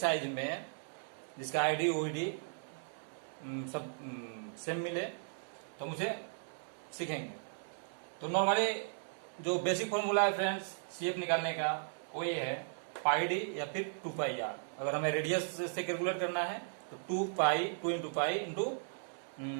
में, जिसका आईडी ओईडी सब सेम मिले, तो हम उसे सीखेंगे। तो नॉर्मली जो बेसिक फॉर्मूला है फ्रेंड्स सीएफ निकालने का वो ये है πd या फिर 2πr। अगर हमें रेडियस से कैलकुलेट करना है तो 2 into pi into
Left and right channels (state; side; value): silent; left; digital silence